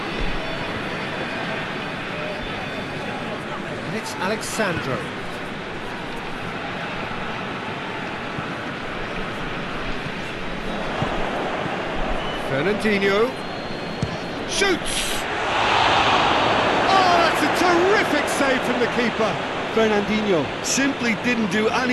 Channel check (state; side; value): identical; both; correlation 1.00